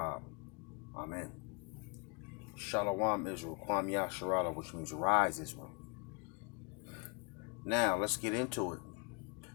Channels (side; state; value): right; quieter; 32.9 dB